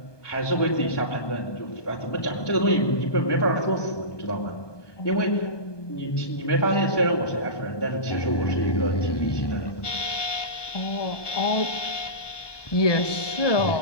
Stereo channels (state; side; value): late; right; 1.2 ms